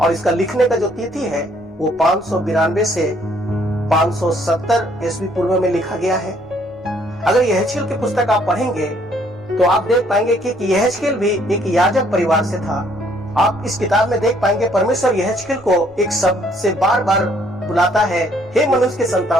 इसका लिखने का जो तिथि है वो 592 से 570 ईस्वी पूर्व में लिखा गया है। अगर यहेजकेल की पुस्तक आप पढ़ेंगे तो आप देख पाएंगे कि यहेजकेल भी एक याजक परिवार से था। आप इस किताब में देख पाएंगे परमेश्वर यहेजकेल को एक शब्द से बार बार बुलाता है, हे मनुष्य के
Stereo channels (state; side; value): normal; both; correlation 0.64